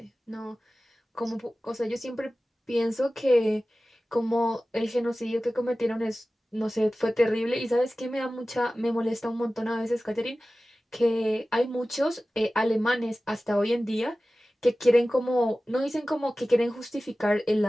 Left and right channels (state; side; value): normal; both; correlation 0.96